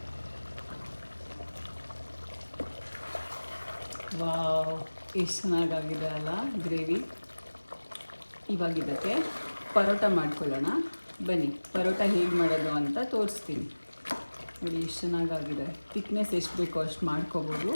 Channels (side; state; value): both; inverted; correlation -1.00